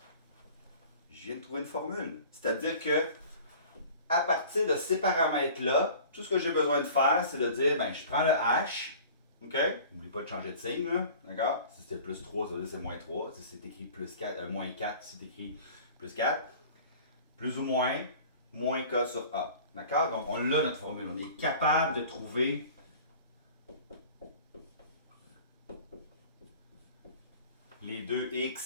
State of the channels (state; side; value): inverted; both; correlation -0.44